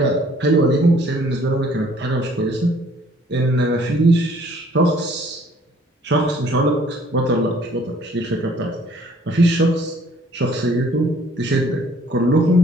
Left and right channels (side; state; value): both; normal; correlation 0.58